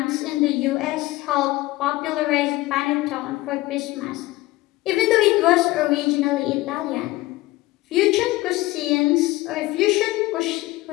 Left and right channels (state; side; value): quieter; right; 18.9 dB